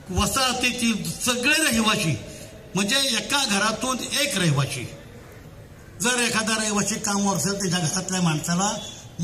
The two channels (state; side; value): identical; both; correlation 1.00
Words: वसाहतीतील सगळे रहिवासी, म्हणजे एका घरातून एक रहिवासी, जर एखादा रहिवासी कामावर असेल त्याच्या घरातल्या माणसाला